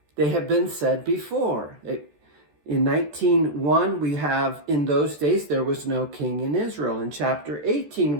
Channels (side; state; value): left; late; 14 ms